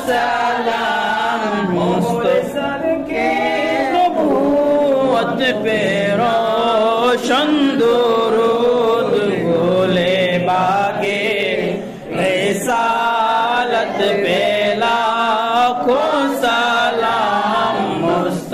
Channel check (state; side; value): identical; both; correlation 1.00